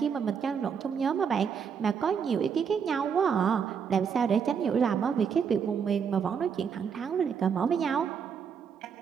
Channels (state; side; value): quieter; left; 6.8 dB